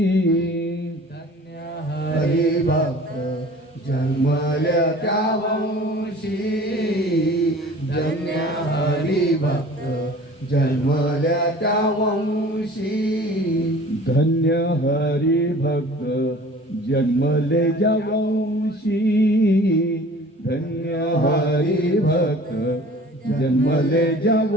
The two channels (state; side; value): normal; both; correlation 0.45